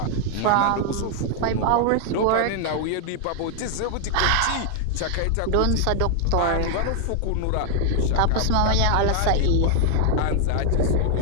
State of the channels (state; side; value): different; both; correlation 0.00